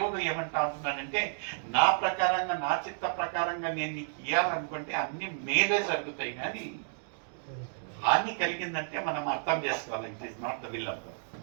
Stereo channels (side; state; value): left; silent; digital silence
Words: ఏమంటా ఉంటున్నాడంటే, నా ప్రకారంగా, నా చిత్త ప్రకారంగా నేను నీకు ఇవ్వాలనుకుంటే అన్ని మేలే జరుగుతాయి, కానీ హాని కలిగిందంటే మనం అర్థం చేసుకోవాలి, it is not the will of God.